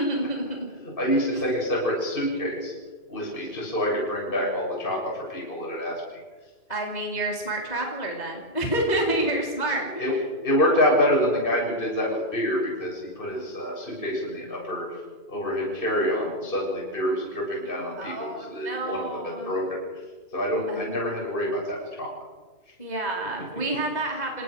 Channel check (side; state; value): right; late; 2.0 ms